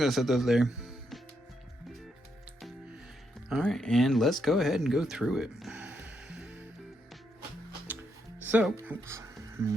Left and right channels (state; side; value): normal; both; correlation 0.79